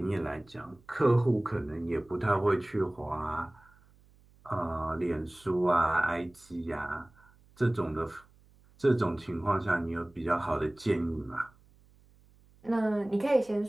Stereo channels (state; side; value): noise; right; hum, 29 dB below the sound